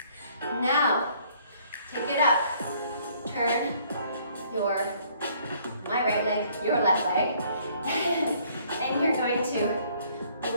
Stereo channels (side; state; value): both; inverted; correlation -0.61